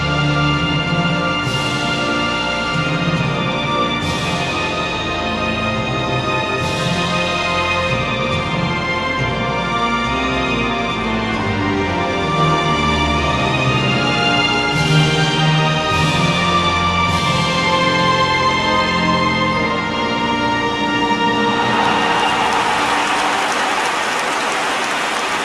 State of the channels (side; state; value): both; identical; correlation 1.00